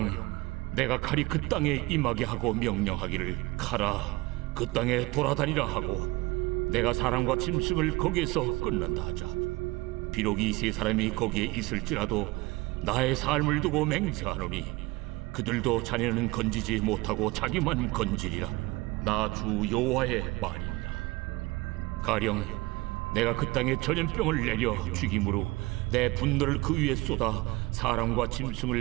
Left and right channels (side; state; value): left; quieter; 22.0 dB